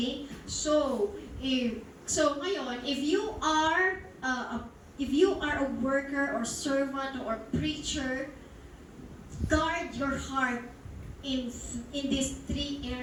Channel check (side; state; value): both; identical; correlation 1.00